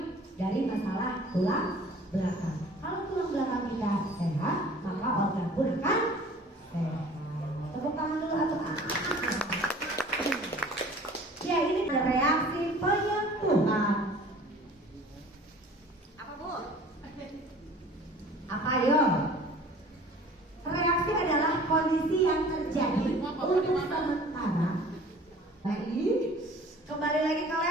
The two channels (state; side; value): normal; both; correlation 0.48